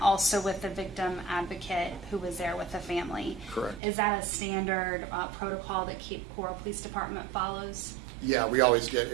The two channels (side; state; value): left; drops out; at 3.8 s